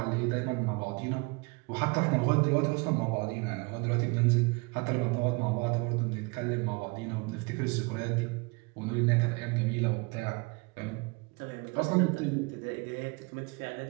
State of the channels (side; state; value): left; quieter; 28.8 dB